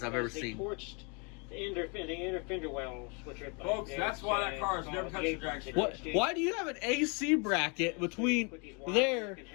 I've ever seen. Torched the inner fender wells, which are Folks, that's why that car has never touched a drag strip. What? Why do you have an AC bracket between there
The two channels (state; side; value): quieter; right; 34.4 dB